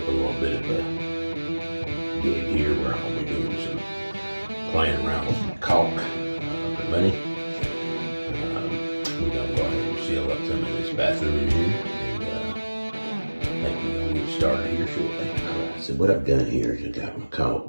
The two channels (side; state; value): both; inverted; correlation -1.00